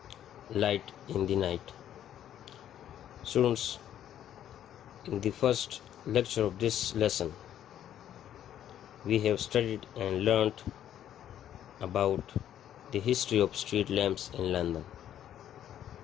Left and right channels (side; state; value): right; quieter; 10.8 dB